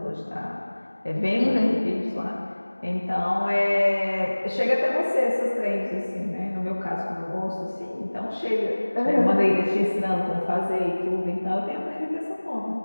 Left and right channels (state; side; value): inverted; both; correlation -1.00